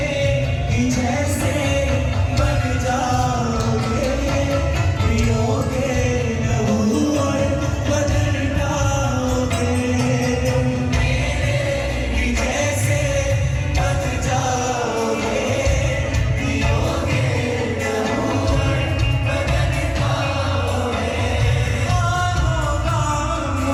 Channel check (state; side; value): identical; both; correlation 1.00